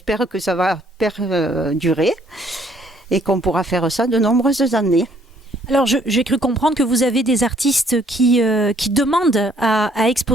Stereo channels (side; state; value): both; normal; correlation 0.64